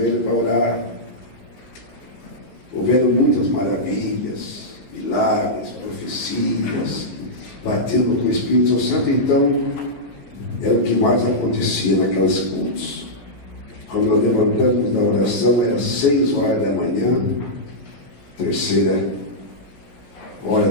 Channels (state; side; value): late; right; 16 ms